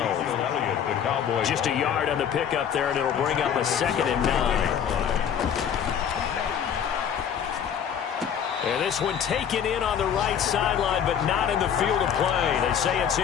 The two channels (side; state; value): right; quieter; 8.4 dB